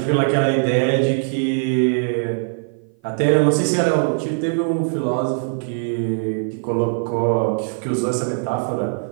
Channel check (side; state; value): left; silent; 56 dB below the other